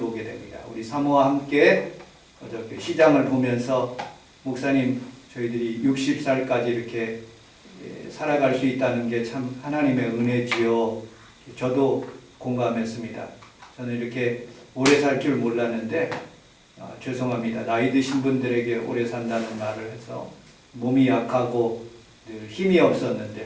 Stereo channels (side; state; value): both; identical; correlation 1.00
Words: 됩니다. 우리 사모와 함께 어저께 시장을 보면서 목사님 저희들이 60살까지 이렇게 살아갈 수 있다는 게 참 하나님의 은혜지요. 저도 공감했습니다. 저는 이렇게 오래 살 줄 몰랐는데 죄송합니다. 나이 드신 분들에게 오래 산다는 말을 해서 몸이 약하고 늘 힘이 없었는데